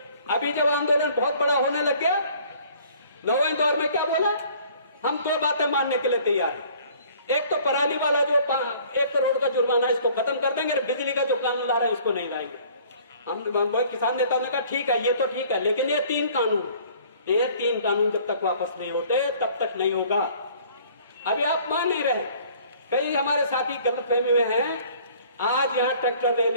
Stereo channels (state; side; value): inverted; both; correlation -0.54